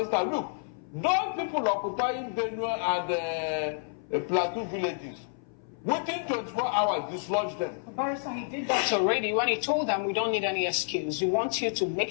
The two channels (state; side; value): silent; right; 57 dB below the other